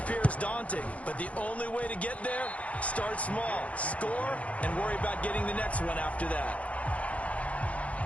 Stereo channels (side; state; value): right; late; 0.065 ms